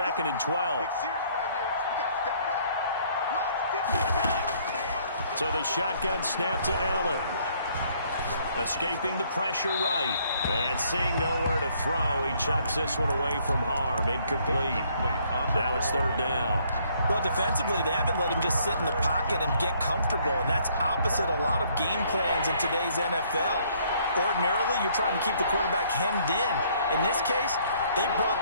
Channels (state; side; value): inverted; both; correlation -0.64